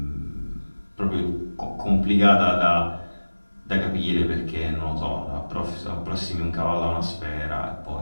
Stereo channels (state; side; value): inverted; both; correlation -1.00